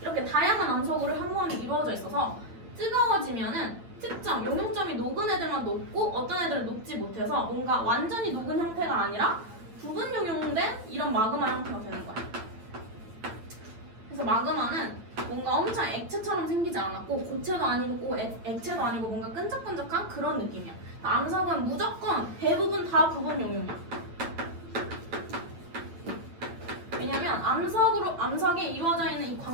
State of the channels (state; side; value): late; left; 9.1 ms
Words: 이렇게 다양한 암석으로 현무암이 이루어져 있어서 뜨거워지면은 특정 용융점이 녹은 애들만 녹고 어떤 애들은 녹지 못해서 뭔가 완전히 녹은 형태가 아니라 부분 용융된 이런 마그마 형태가 되는 거야. 그래서 마그마는 뭔가 엄청 액체처럼 생기지 않았고 고체도 아니고 액체도 아니고 뭔가 끈적끈적한 그런 느낌이야. 암석은 무조건 대부분 다 부분 용융이야. 왜냐면 암석에 이루어져 있는 이